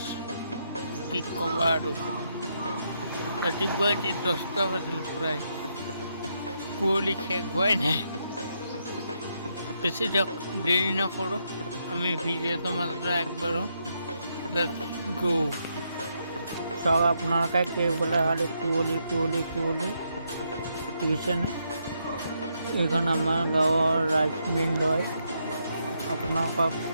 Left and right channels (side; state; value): both; inverted; correlation -0.79